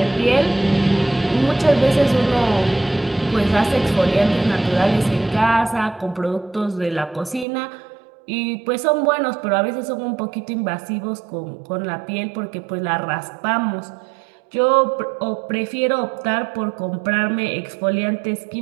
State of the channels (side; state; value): left; drops out; at 7.5 s